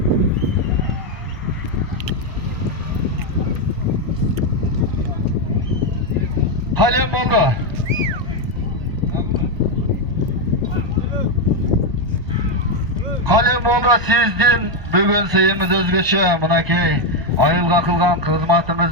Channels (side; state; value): left; late; 1.0 ms